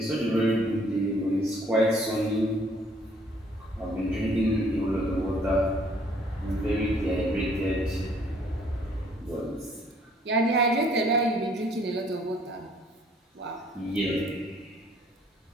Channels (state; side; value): normal; both; correlation 0.61